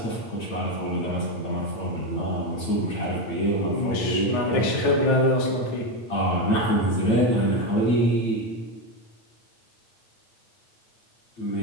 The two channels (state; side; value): late; right; 8.9 ms